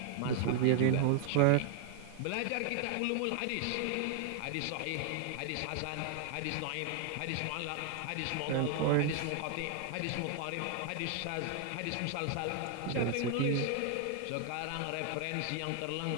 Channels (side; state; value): both; different; correlation 0.00